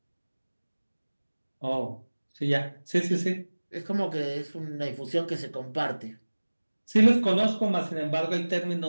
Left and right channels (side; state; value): both; inverted; correlation -1.00